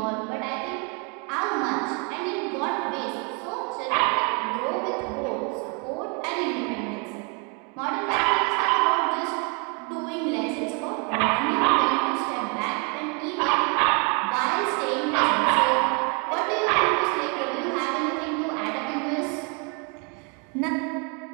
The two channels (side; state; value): left; quieter; 34.5 dB